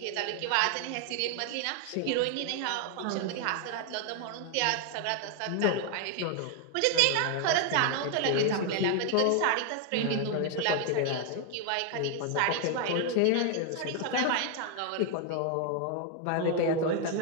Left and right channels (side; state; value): both; different; correlation 0.00